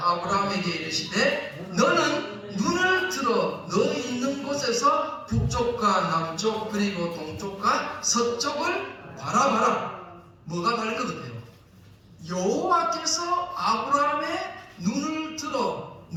이르시되 너는 눈을 들어 너 있는 곳에서 북쪽과 남쪽 그리고 동쪽과 서쪽을 바라봐라. 뭐가 다른 것 같아요? 여호와께서 아브라함의 눈을 들어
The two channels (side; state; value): both; identical; correlation 1.00